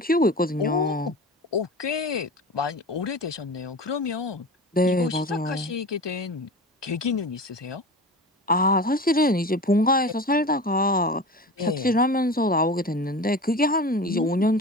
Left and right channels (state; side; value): normal; both; correlation 0.33